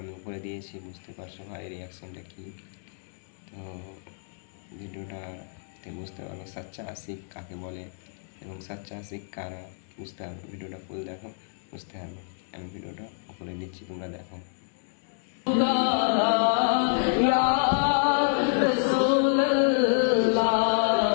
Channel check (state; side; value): silent; right; digital silence